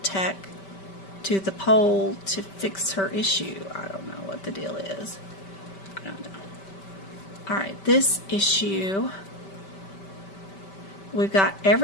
tech to the pole to fix her issue? I don't know what the deal is. I don't know. All right, this issue, we've got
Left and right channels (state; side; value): late; right; 5.2 ms